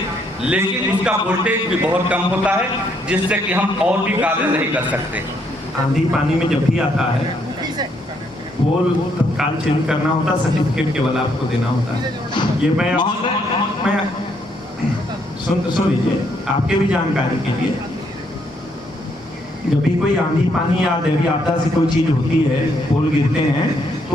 लेकिन उसका वोल्टेज भी बहुत कम होता है, जिससे कि हम और भी कार्य नहीं कर सकते। आंधी पानी में जब भी आता है पोल तत्काल चेंज करना होता, सर्टिफिकेट केवल आपको देना होता है। ये मैं सुन लीजिए आपके भी जानकारी के लिए, जब भी कोई आंधी पानी या दैवीय आपदा से कोई चीज होती है, पोल गिरते हैं,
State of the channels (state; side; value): normal; both; correlation 0.72